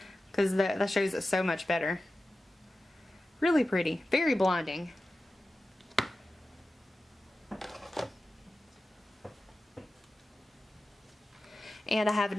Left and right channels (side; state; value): both; normal; correlation 0.94